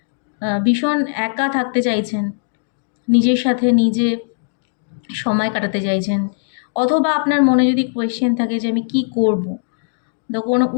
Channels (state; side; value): silent; right; digital silence